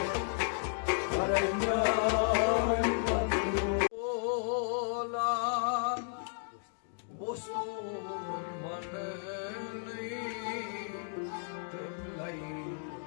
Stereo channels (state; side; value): silent; right; digital silence